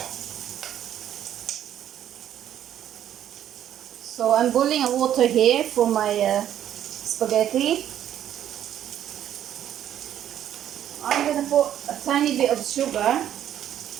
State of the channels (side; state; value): left; quieter; 10.8 dB